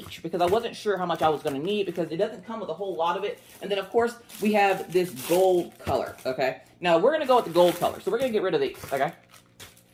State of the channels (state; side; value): identical; both; correlation 1.00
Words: because I wasn't sure how much I was going to need because it doesn't come with a whole lot of it. And then, of course, we have this gold color, okay? Now, we're going to go with the gold color. So we're going to get rid of these, okay?